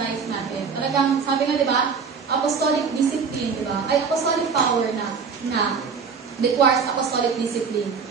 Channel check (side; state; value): left; quieter; 5.7 dB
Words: life natin. Talagang, sabi nga, di ba, apostolic discipline, di ba? Ay, apostolic power na requires apostolic discipline.